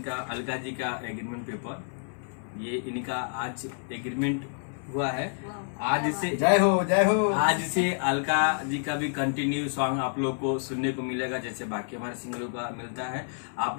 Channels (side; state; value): right; silent; 59 dB below the other